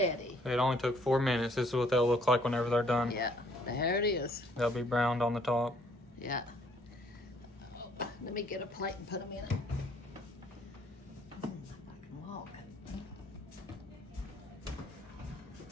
It only took 4 minutes. This is what they'll look like whenever they're done. Yeah, there it is. They'll be browned on the top. Yeah. Oh, let me get a plate and put them in it. I can walk.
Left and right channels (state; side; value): normal; both; correlation 0.63